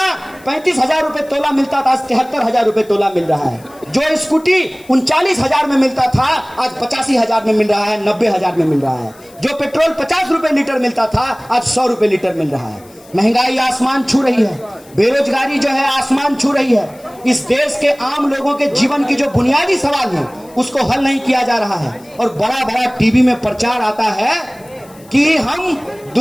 35,000 रुपए तोला मिलता था आज 73,000 रुपए तोला मिल रहा है। जो स्कूटी 39,000 में मिलता था आज 85,000 में मिल रहा है, 90,000 में मिल रहा है। जो पेट्रोल 50 रुपए लीटर मिलता था आज 100 रुपए लीटर मिल रहा है। महंगाई आसमान छू रही है, बेरोजगारी जो है आसमान छू रही है। इस देश के आम लोगों के जीवन की जो बुनियादी सवाल है उसको हल नहीं किया जा रहा है और बड़ा बड़ा टीवी में प्रचार आता है कि हम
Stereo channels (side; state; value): left; noise; hiss, 26 dB below the sound